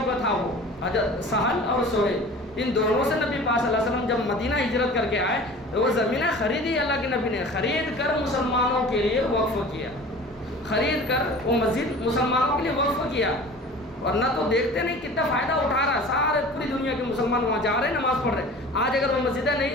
کا تھا وہ، حضرت سہل اور سہیل، ان دونوں سے نبی پاک صلی اللہ علیہ وسلم جب مدینہ ہجرت کر کے آئے تو وہ زمینیں خریدی، اللہ کے نبی نے خرید کر مسلمانوں کے لیے وقف کیا، خرید کر وہ مسجد مسلمانوں کے لیے وقف کیا۔ ورنہ تو دیکھتے نہیں کتنا فائدہ اٹھا رہا ہے، سارے پوری دنیا کے مسلمان وہاں جا رہے نماز پڑھ رہے۔ آج اگر وہ مسجدیں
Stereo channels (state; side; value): normal; both; correlation 0.41